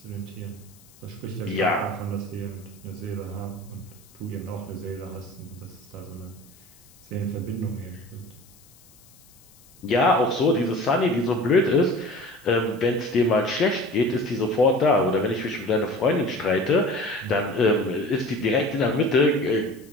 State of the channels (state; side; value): noise; left; hiss, 27 dB below the sound